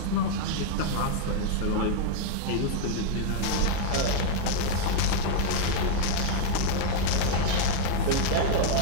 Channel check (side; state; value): both; different; correlation 0.00